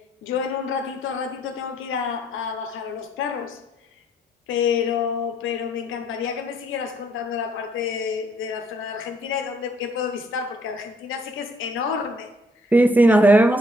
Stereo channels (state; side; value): normal; both; correlation 0.64